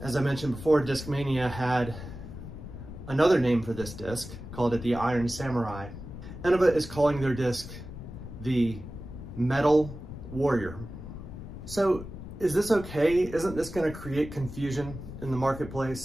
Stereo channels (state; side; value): noise; left; rumble, 11 dB below the sound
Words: As I mentioned before, Discmania had another name for this disc, called it the Iron Samurai. Innova is calling their disc the Metal Warrior. So is this okay? Isn't this going to create confusion in the